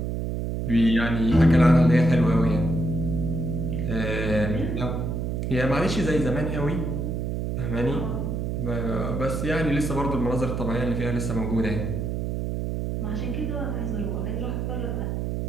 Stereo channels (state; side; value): noise; right; hum, 2 dB below the sound